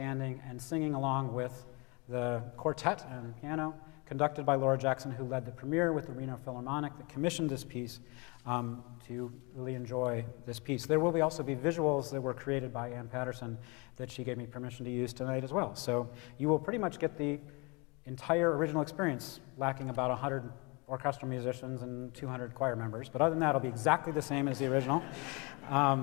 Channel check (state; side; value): quieter; right; 29.3 dB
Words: and singing along with the quartet and piano, conducted by Laura Jackson, who led the premiere with the Reno Philharmonic that commissioned this piece to really enjoy this piece. There will also be visuals that were created by Ann Patterson that she gave me permission to use tonight as well. So you will pretty much get the entire original experience, lacking about 100 orchestral musicians and 200 choir members. But other than that, it'll be exactly the same as the original.